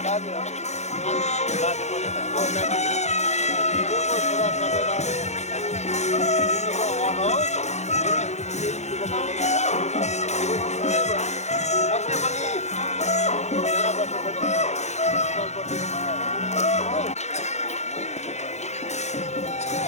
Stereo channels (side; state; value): right; late; 0.33 ms